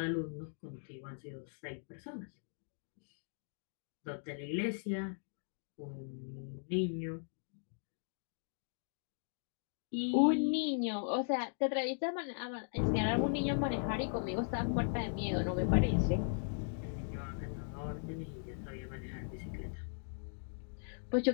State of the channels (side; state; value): right; silent; digital silence